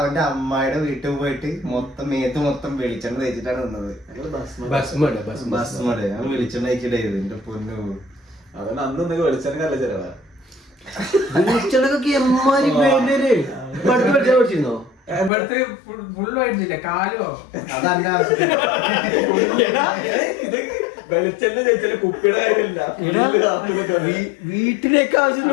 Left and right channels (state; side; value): drops out; right; at 15.3 s